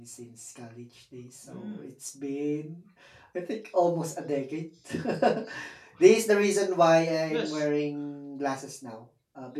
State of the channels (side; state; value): both; identical; correlation 1.00